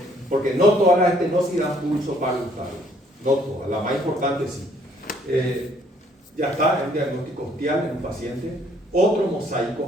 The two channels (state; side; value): normal; both; correlation 0.64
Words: porque no todas las estenosis dan pulso parvultado. No todas, la más importante sí. Ya está, el diagnóstico ostial en un paciente. Otro